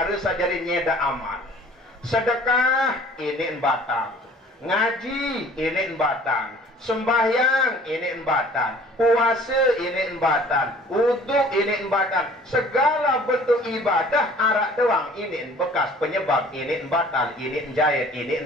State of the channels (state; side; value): normal; both; correlation 0.51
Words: sajari nyeda amal. Sedekah ini batang. Ngaji ini batal, sembahyang ini batal, puasa ini batal, wuduk ini batal, segala bentuk ibadah arak doang ini bekas penyebab ini batal, ini jahit,